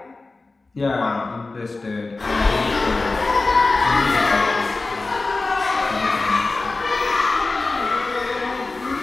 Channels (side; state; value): right; quieter; 3.5 dB